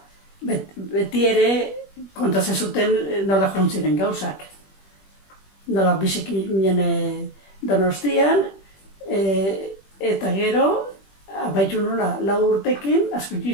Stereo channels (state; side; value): late; right; 21 ms